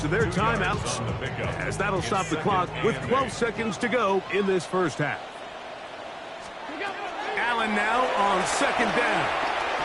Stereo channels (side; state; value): both; identical; correlation 1.00